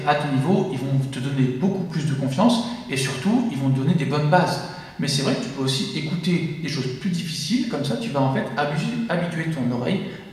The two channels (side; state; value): both; identical; correlation 1.00